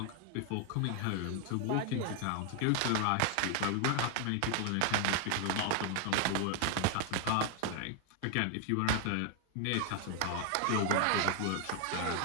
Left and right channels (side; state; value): both; different; correlation 0.00